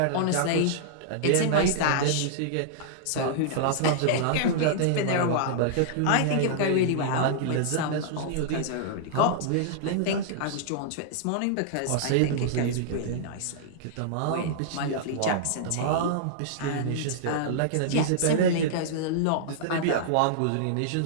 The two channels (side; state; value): both; different; correlation -0.02